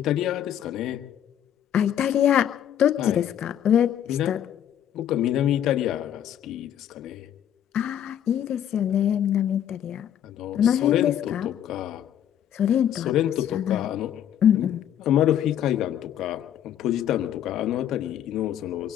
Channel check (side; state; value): right; quieter; 10.3 dB